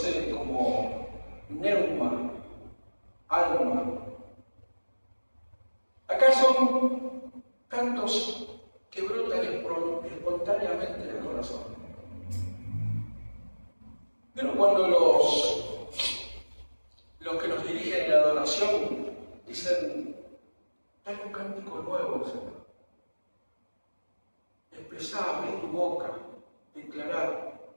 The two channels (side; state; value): both; inverted; correlation -1.00